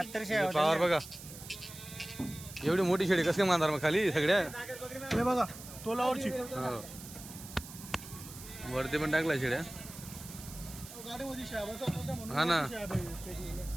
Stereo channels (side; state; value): right; noise; hiss, 14 dB below the sound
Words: पावर बघा. एवढी मोठी शेडी कसं काय मानणार मग खाली सगळ्या. हे बघा तोलावरची. वरती पण टाकलाय शेड्या. हा ना